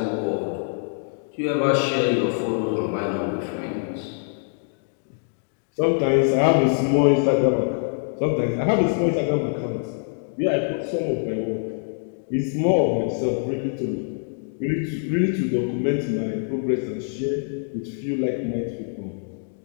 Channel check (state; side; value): silent; right; digital silence